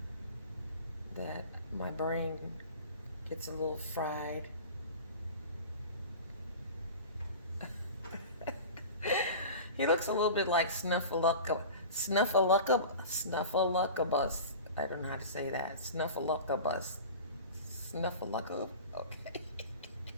that my brain gets a little fried. He looks a little bit like Snuffleupagus. I don't know how to say that. Snuffleupagus. Snuffleupagus? Okay.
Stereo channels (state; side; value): inverted; both; correlation -0.36